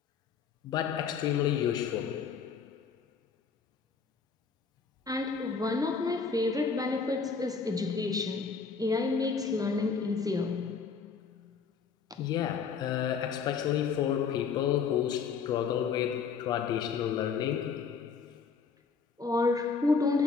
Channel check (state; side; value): quieter; right; 5.7 dB